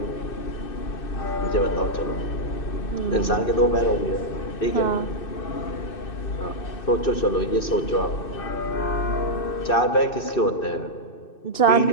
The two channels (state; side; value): late; right; 2.6 ms